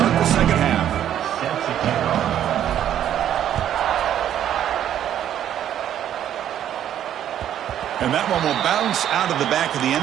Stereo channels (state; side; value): quieter; left; 10.6 dB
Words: the second half. And that one will bounce out of the back of the